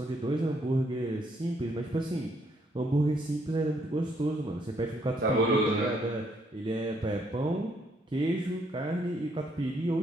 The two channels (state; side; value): normal; both; correlation 0.70